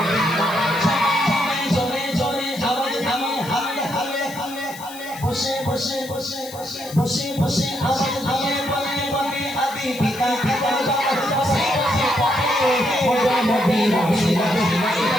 চলে চলে আওয়াজ আমি হালে হালে হালে বসে বসে বসে বসে বসে বসে আওয়াজ আমি বলতে বলতে আদি পিতা পিতা বসে বসে মোদের নবী রসিলাতে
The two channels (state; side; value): noise; left; hiss, 16 dB below the sound